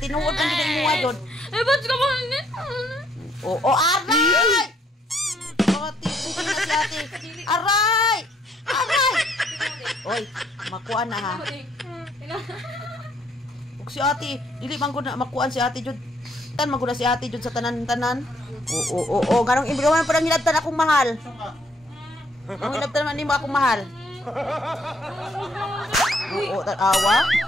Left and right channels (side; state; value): both; normal; correlation 0.68